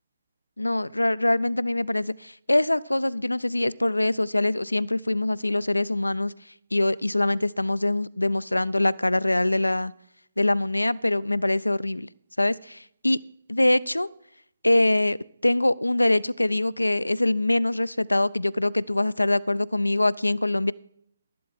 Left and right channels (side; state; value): both; inverted; correlation -0.99